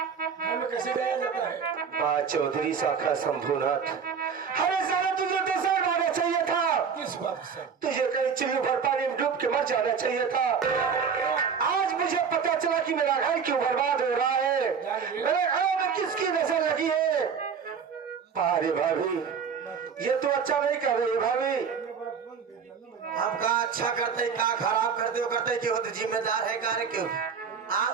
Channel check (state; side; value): quieter; left; 6.4 dB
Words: में कैसे गया जाता है? चौधरी शाखा शंभुनाथ, अरे साला तुझे तो सर मारना चाहिए था। किस बात से? तुझे कहीं चिल्लू भर पानी में डूब के मर जाना चाहिए था। आज मुझे पता चला कि मेरा घर क्यों बर्बाद हो रहा है, मेरे घर में किसकी नजर लगी है। अरे भाभी ये तो अच्छा नहीं कर रही भाभी। हम का अच्छा करते का खराब करते हो करते क्यों तो जिम्मेदार है कार्य क्यों?